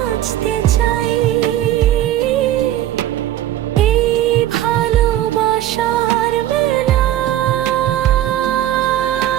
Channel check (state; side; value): quieter; left; 12.8 dB